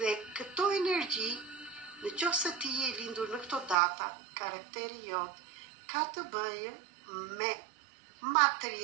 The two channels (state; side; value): drops out; left; at 3.8 s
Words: këto energji, në qoftë se ti je lindur në këto data, karakteri jot ka të bëjë me